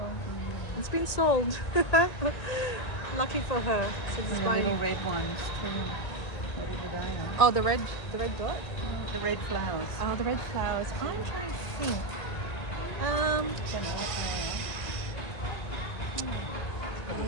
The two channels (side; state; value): right; late; 1.9 ms